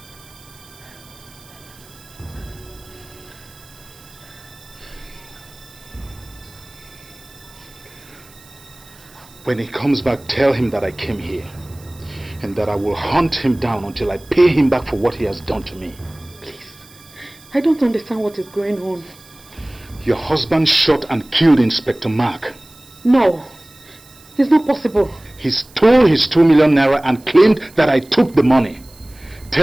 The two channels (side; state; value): right; noise; hiss, 24 dB below the sound